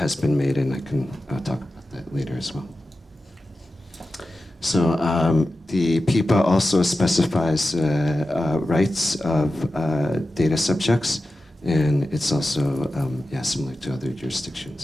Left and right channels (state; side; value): normal; both; correlation 0.93